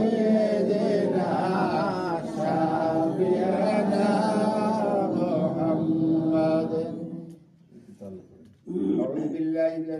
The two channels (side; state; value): both; identical; correlation 1.00